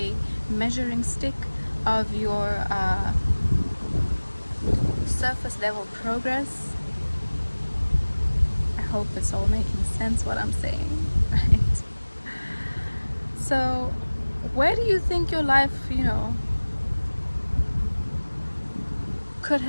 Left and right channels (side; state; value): both; inverted; correlation -1.00